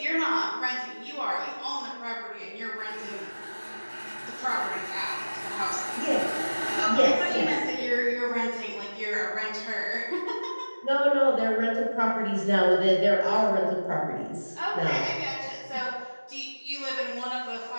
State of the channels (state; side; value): inverted; both; correlation -1.00